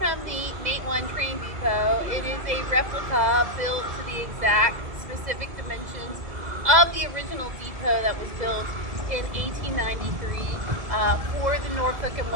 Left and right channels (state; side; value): late; left; 2.0 ms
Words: the Matewan train depot. It is a replica built to the exact specific dimensions of the original depot that was built in 1893 for the Norfolk and